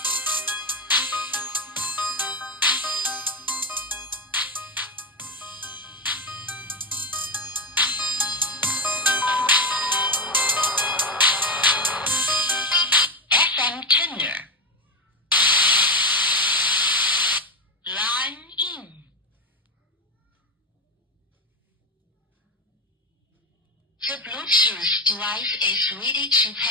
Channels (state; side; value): normal; both; correlation 0.13